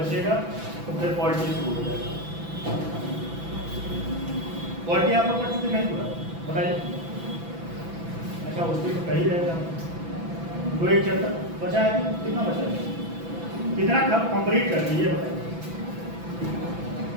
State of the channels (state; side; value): late; left; 6.0 ms